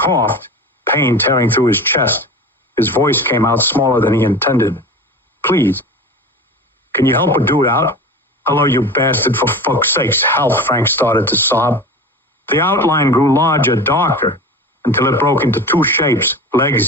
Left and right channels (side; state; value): both; normal; correlation 0.33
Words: pain tearing through his chest. His voice came out smaller than he intended. Please. Can you help a dude out? Hello, you bastard, for fuck's sakes. Help, Frank started to sob. The outline grew larger, darker, until it broke into two shapes,